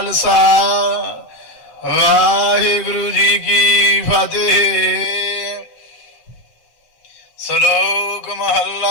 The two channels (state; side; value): late; right; 7.7 ms